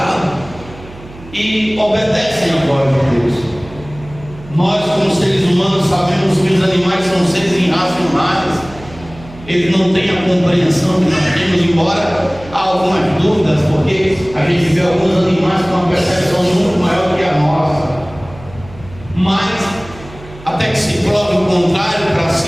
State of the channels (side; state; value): right; noise; hum, 18 dB below the sound